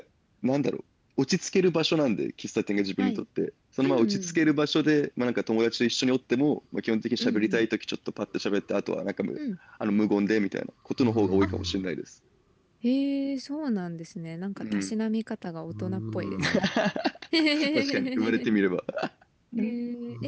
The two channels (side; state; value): both; identical; correlation 1.00